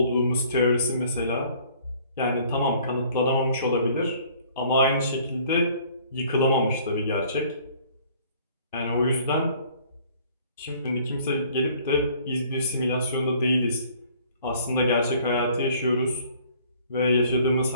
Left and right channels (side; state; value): both; inverted; correlation -0.56